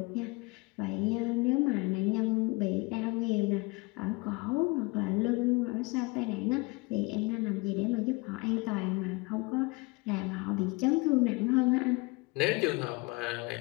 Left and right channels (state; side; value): quieter; right; 26.0 dB